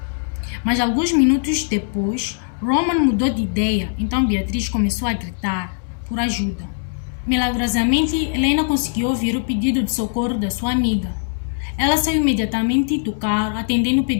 Mas alguns minutos depois, Roman mudou de ideia, então Beatriz começou a gritar por ajuda. Milagrosamente, Helena conseguiu ouvir o pedido de socorro da sua amiga. Ela saiu imediatamente do carro, atendendo o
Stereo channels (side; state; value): right; silent; digital silence